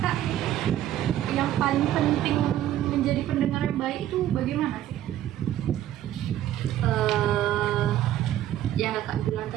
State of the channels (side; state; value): left; quieter; 12.5 dB